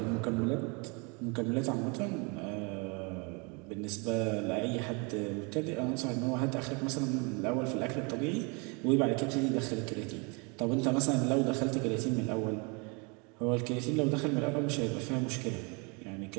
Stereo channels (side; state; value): left; quieter; 31.7 dB